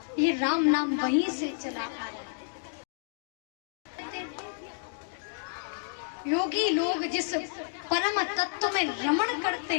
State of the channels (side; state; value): right; silent; digital silence